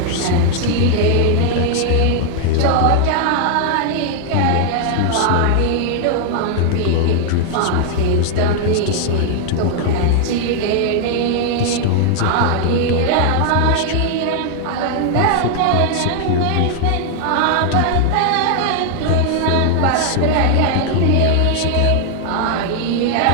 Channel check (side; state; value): both; different; correlation 0.00